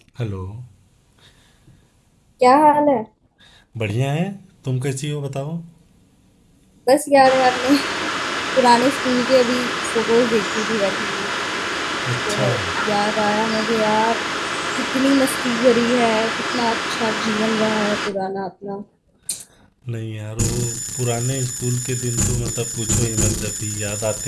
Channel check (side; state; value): both; identical; correlation 1.00